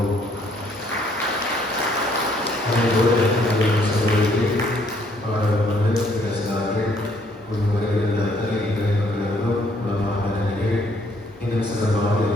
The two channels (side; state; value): both; normal; correlation 0.66